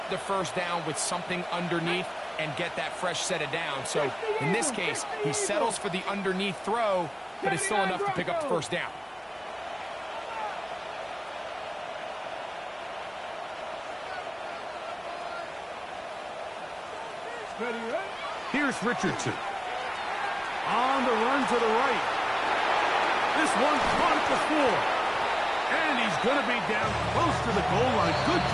the first down with something underneath and get that fresh set of downs. So in this case, he settles for the underneath throw, but it's still enough to pick up the first down. Here's Richardson. On the run to the right. This one caught at the floor. And he's going to be down close to the goal line. Good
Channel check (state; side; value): identical; both; correlation 1.00